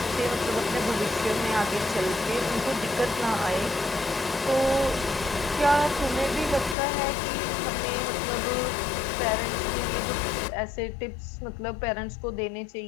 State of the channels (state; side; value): drops out; right; at 6.8 s